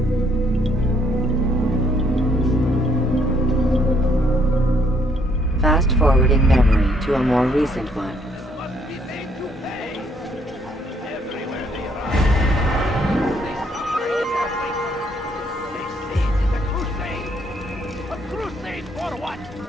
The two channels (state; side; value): normal; both; correlation 0.68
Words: Fast forwarding memory to a more recent one.